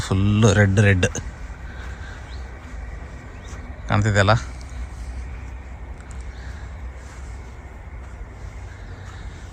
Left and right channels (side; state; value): both; identical; correlation 1.00